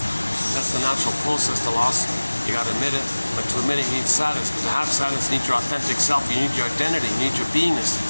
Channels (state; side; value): inverted; both; correlation -1.00